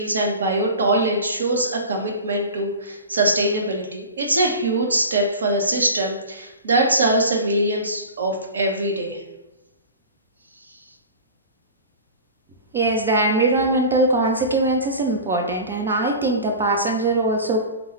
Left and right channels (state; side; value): inverted; both; correlation -0.35